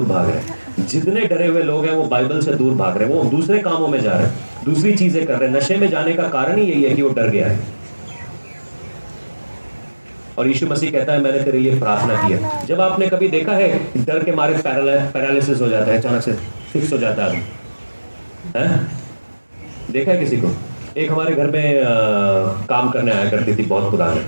भाग रहे हैं, जितने डरे हुए लोग हैं वो बाइबल से दूर भाग रहे हैं, वो दूसरे कामों में जा रहे हैं, दूसरी चीजें कर रहे हैं। नशे में जाने का कारण ही यही है कि वो डर गया है। और यीशु मसीह कहता है मैंने तेरे लिए प्रार्थना की है। जब आपने कभी देखा है डर के मारे पैरालिसिस हो जाता है, अचानक से फिक्स हो जाता है आदमी? देखा है किसी को? एक हमारे घर में काम करने आया करती थी, बहुत पुराने,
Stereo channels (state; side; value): inverted; both; correlation -1.00